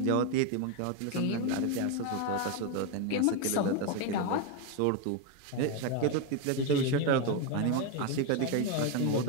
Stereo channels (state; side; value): different; both; correlation 0.02